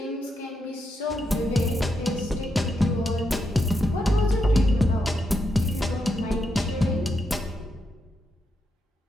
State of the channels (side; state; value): both; normal; correlation 0.83